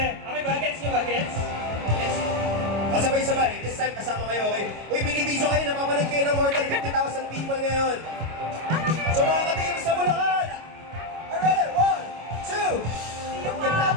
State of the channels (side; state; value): left; late; 25 ms